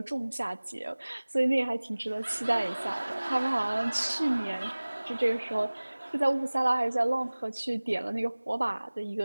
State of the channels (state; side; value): inverted; both; correlation -1.00